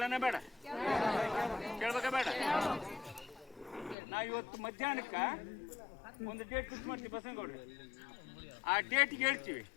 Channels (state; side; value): drops out; right; at 4.0 s